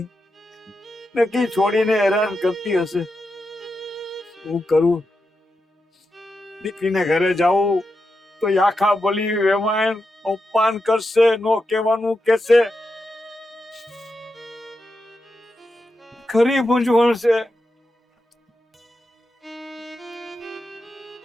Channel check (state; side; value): normal; both; correlation 0.87